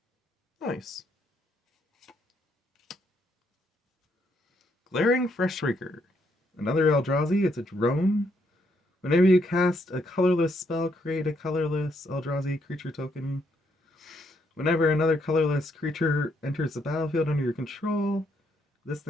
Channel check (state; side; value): normal; both; correlation 0.74